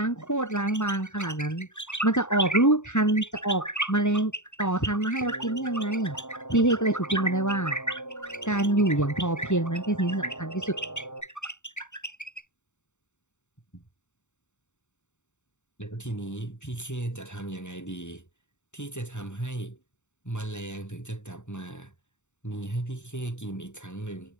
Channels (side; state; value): right; late; 0.84 ms